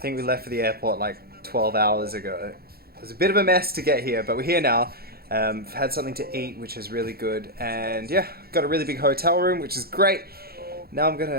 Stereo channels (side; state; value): left; late; 0.45 ms